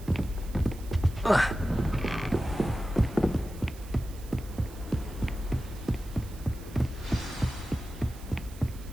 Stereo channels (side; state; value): right; noise; hiss, 20 dB below the sound